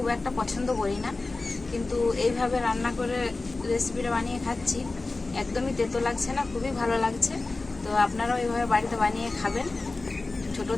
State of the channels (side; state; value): right; quieter; 3.4 dB